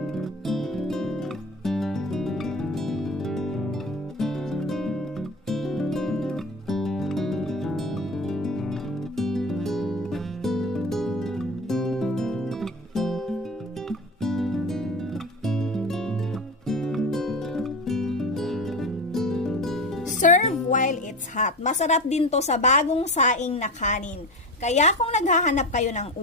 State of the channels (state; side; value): normal; both; correlation 0.27